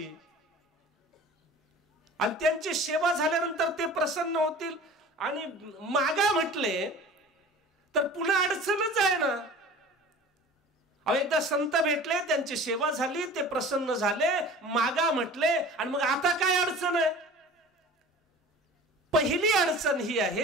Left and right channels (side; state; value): both; normal; correlation 0.41